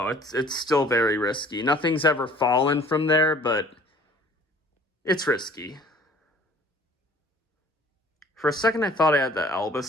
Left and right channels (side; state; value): both; normal; correlation 0.52